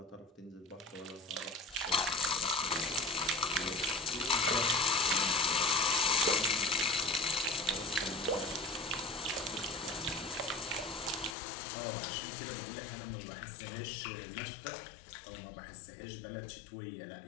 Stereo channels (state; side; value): drops out; right; at 11.4 s